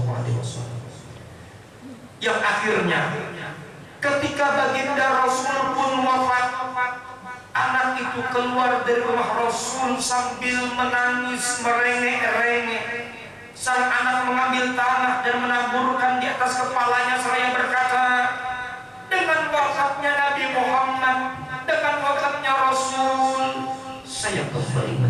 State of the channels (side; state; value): both; identical; correlation 1.00